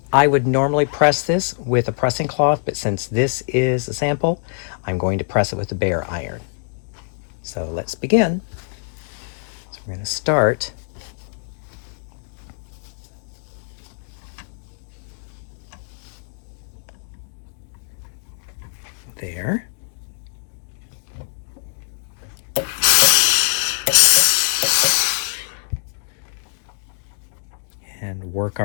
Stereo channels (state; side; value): silent; right; digital silence